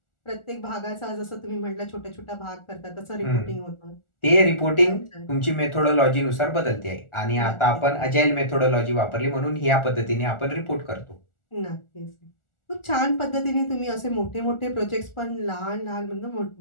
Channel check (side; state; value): right; late; 1.4 ms